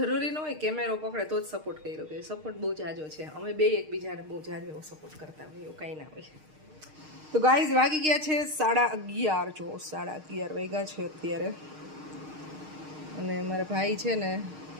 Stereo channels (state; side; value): late; left; 6.5 ms